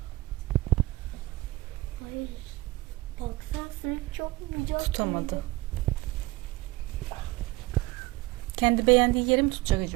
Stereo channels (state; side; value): quieter; left; 20.0 dB